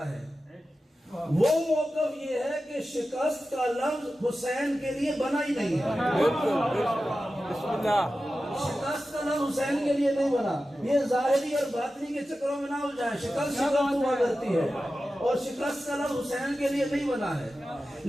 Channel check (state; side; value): normal; both; correlation 0.93